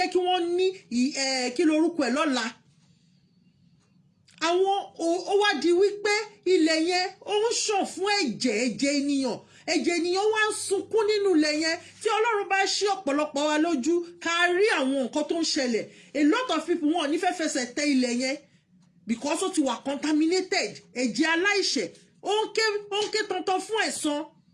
kí wọ́n ní kí lorúkọ ẹ̀ lọ́la àwọn ó wá di wípé ilẹ̀ yẹn ó ń ṣàn fún ẹ̀jẹ̀ ènìyàn wá ń sunkún nínú ilẹ̀ yẹn. Tí Ọlọ́run bá ṣí ọ̀pọ̀lọpọ̀ wa lójú ká rí àwọn nǹkan tó ń ṣẹlẹ̀, a lot of people wọn ò ní fẹ́ fẹsẹ̀ tẹ ilẹ̀ yẹn because ó ti wà contaminated. Ẹ̀jẹ̀ aláìṣẹ̀ ó ń ké tantan fún ẹ̀san.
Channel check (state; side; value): identical; both; correlation 1.00